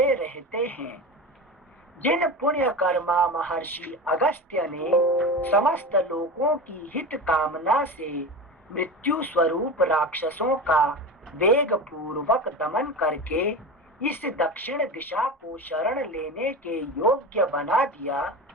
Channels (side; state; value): both; normal; correlation 0.27